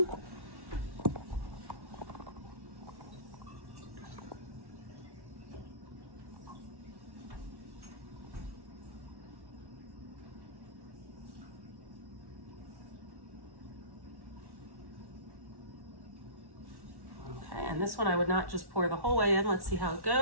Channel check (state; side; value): late; left; 1.1 ms